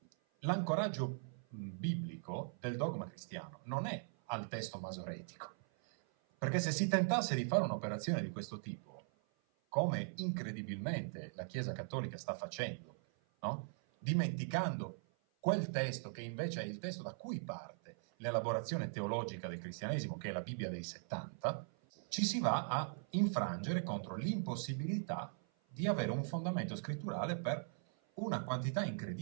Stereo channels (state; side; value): silent; left; 51 dB below the other